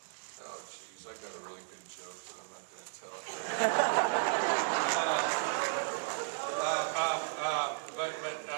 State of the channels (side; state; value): left; silent; digital silence